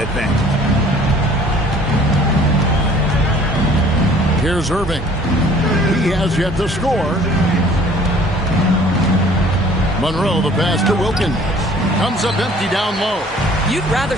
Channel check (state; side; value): normal; both; correlation 0.53